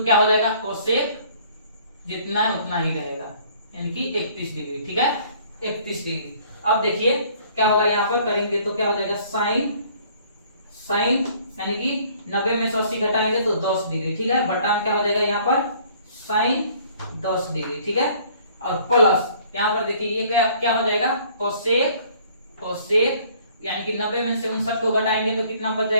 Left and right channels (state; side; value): inverted; both; correlation -0.57